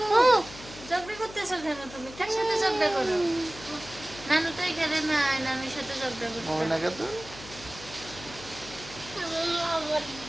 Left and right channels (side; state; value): left; noise; hum, 16 dB below the sound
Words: ঝগড়া করতেছো কেন তুমি? কার সাথে ঝগড়া করো? নানু তো এখানে নাই, নানুর সাথে ঝগড়া করতে। মোমেনা খাতুন